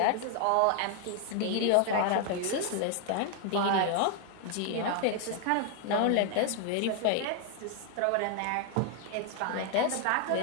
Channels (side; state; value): both; different; correlation 0.00